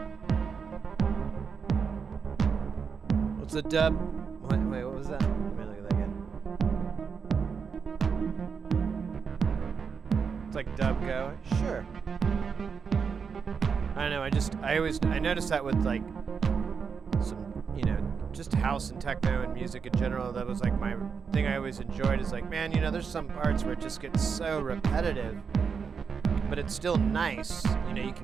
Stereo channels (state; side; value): quieter; left; 6.0 dB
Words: What's a dub? Wait, what was that? Let me look at that again. It's like dub go. Sure. I don't know. I noticed that with like some, you know, just house and techno and music in general. That was like my thing I always enjoyed is like, man, you know, there's some parts where it just gets so repetitive, but it's still nice. You know, you